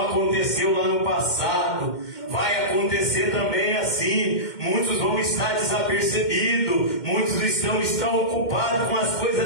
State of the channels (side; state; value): right; late; 2.1 ms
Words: lá no passado, vai acontecer também assim. Muitos vão estar desapercebidos, muitos estão ocupados com as